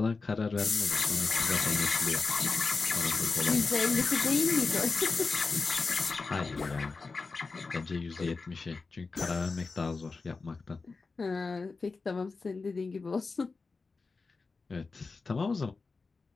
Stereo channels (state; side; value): quieter; right; 4.2 dB